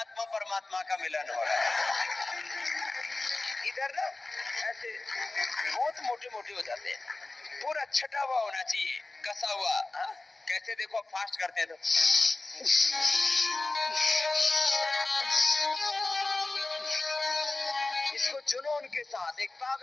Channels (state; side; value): quieter; right; 3.2 dB